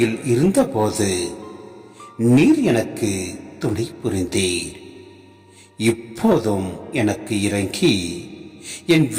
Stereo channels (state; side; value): identical; both; correlation 1.00